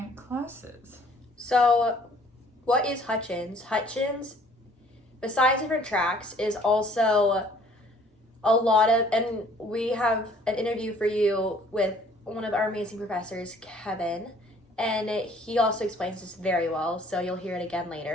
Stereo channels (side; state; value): both; normal; correlation 0.57